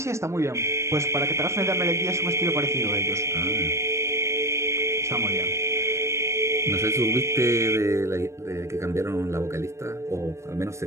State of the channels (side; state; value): left; late; 0.14 ms